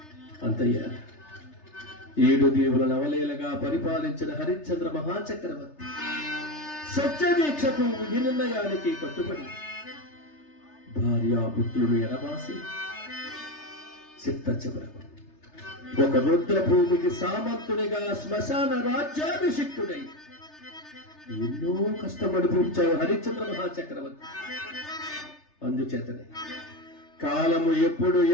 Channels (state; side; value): late; right; 3.3 ms